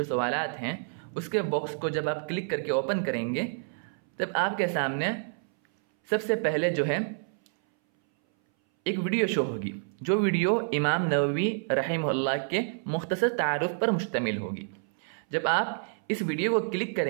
सवालात हैं उसके बॉक्स को जब आप क्लिक करके ओपन करेंगे तब आपके सामने सबसे पहले जो है एक वीडियो शो होगी, जो वीडियो इमाम नववी रहमहुल्लाह के मुख्तसर तारुफ पर मुश्तमिल होगी। जब आप इस वीडियो को क्लिक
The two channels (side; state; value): left; silent; 59 dB below the other